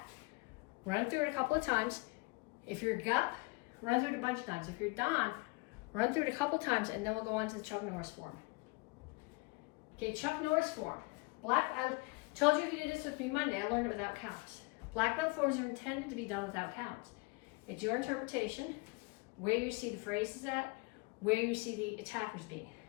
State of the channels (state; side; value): quieter; right; 27.8 dB